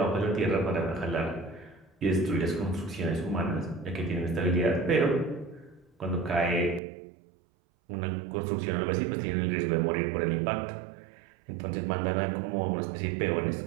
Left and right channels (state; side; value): drops out; left; at 6.8 s